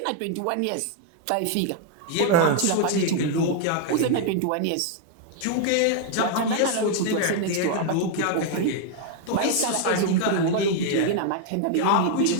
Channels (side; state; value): both; different; correlation 0.00